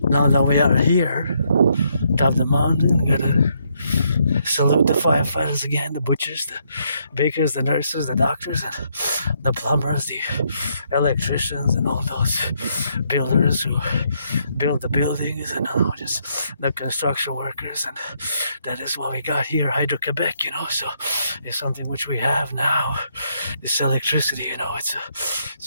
now that we are here, top of the mountain, gotta salute the firefighters again, the butchers, the bakers, the nurses, the doctors, and the plumbers, the electricians, and all those builders who build the buildings, and just the construction workers. And that is what we got here, Hydro-Quebec, So it's something which we have now, this electricity,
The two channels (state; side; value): inverted; both; correlation -0.74